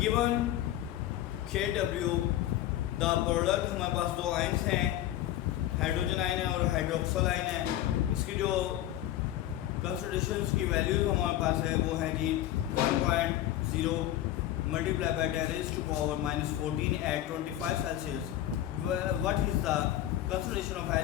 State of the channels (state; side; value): quieter; right; 13.2 dB